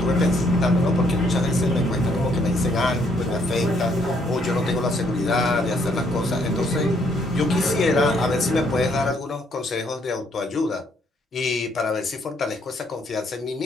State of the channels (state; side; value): normal; both; correlation 0.69